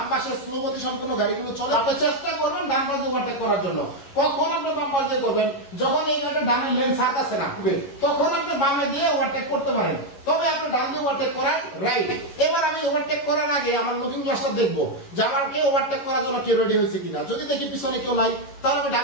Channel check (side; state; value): right; late; 11 ms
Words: পাশে স্লো গতি সম্পন্ন গাড়িগুলো চলে। আপনি চেষ্টা করবেন ডান পাশ দিয়ে ওভারটেক করার জন্য। কখন আপনি বাম পাশ দিয়ে করবেন? যখন এই গাড়িটা ডানের লেন ছাড়তেছে না, তখন আপনি বামে দিয়ে ওভারটেক করতে পারেন, তবে আপনি ডান দিয়ে ওভারটেক করার রাইট। এবার আমি ওভারটেক করার আগে আমার লুকিং গ্লাসটা দেখবো যে আমাকে ওভারটেক করার জন্য কেউ রেডি হয়েছে কিনা। যদি দেখি পিছনে কেউ নাই, তাহলে আমি